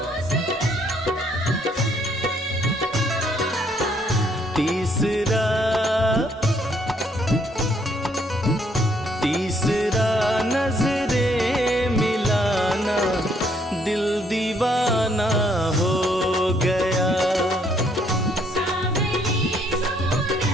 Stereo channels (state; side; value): normal; both; correlation 0.68